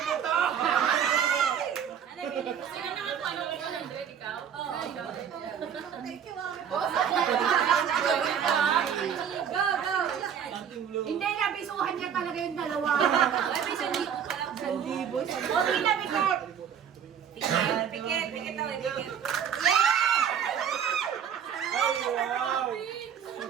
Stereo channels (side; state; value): left; quieter; 8.3 dB